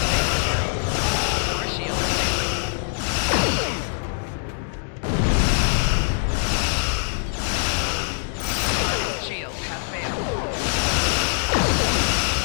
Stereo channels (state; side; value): silent; right; digital silence